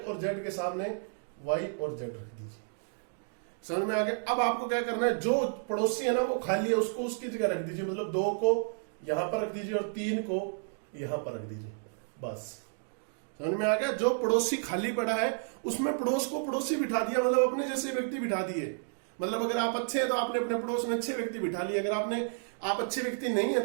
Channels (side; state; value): left; silent; digital silence